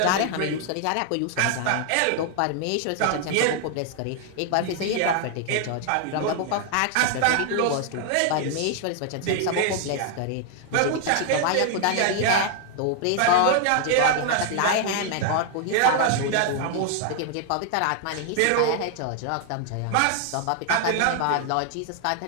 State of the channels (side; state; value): both; different; correlation 0.00